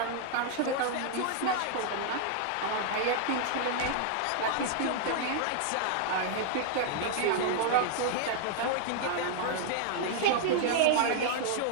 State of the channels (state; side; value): different; both; correlation -0.01